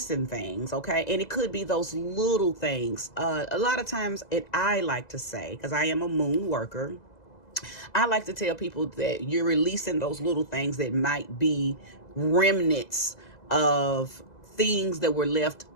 things, okay? And it could be those little things. A lot of times, I like to say, because I am a moon worker, I like to tell people that you're releasing those little things that might be remnants of things that were left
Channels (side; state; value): right; late; 2.0 ms